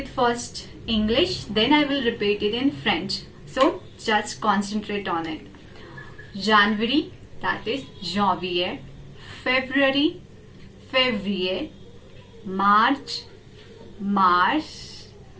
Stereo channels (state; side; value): identical; both; correlation 1.00